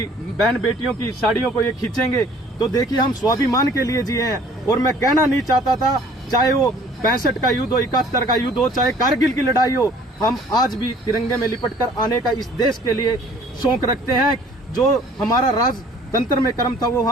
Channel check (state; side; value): normal; both; correlation 0.54